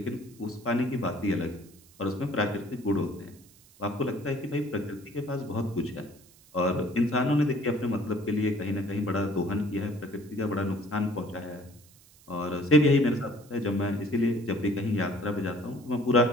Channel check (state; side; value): noise; right; hiss, 26 dB below the sound